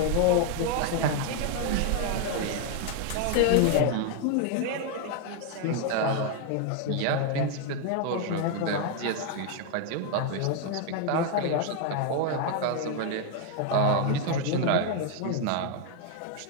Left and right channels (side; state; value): both; different; correlation 0.00